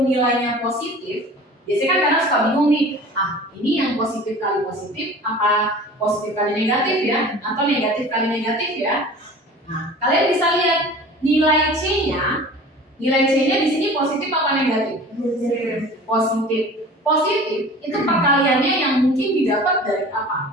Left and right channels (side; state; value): both; normal; correlation 0.41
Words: nilainya positif, biasanya kan kadang suka bingung nih, ini yang positif kali positif, apa positif kali negatif ya, atau negatif kali negatif ya. Nah, kalian bisa lihat nilai C-nya di sini positif apa negatif? Positif. Positif itu perkaliannya yang mungkin didapat dari